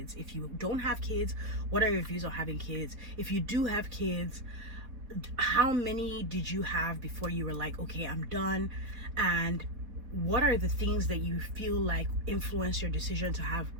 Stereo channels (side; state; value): left; late; 4.3 ms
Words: If you don't have kids, what are your views on having kids? If you do have kids, how many did you have before you were like, okay, I'm done? And what are the things that you feel like influence your decision to have